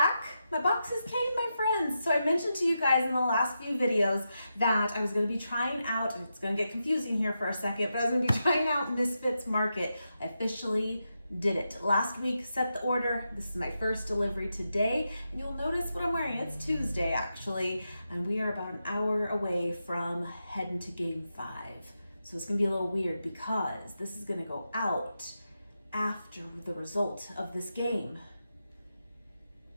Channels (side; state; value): both; inverted; correlation -0.87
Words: My boxes came, my friends. So I mentioned to you guys in the last few videos that I was going to be trying out, and it's going to get confusing here for a second, but I was going to be trying out Misfits Market. I officially did it. Last week, set the order. This is my first delivery today, and you'll notice what I'm wearing. It's Tuesday, actually, and we are about an hour away from heading to Game 5. So it's going to be a little weird because this is going to go out after the result of this game.